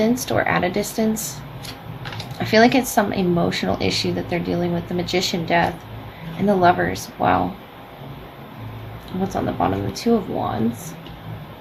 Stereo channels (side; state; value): both; identical; correlation 1.00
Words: or at a distance, I feel like it's some emotional issue that they're dealing with. The Magician, Death, and the Lovers. Wow. What's on the bottom? The Two of Wands,